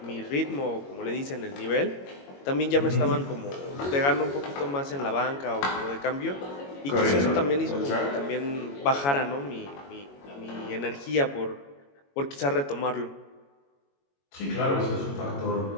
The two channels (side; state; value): right; late; 22 ms